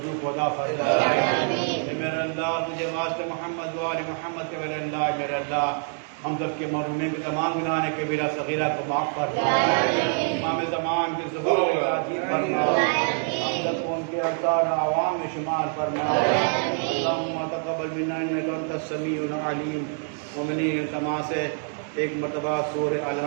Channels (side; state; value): left; silent; 56 dB below the other